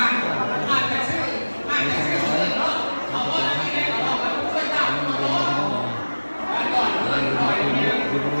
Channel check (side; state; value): both; inverted; correlation -1.00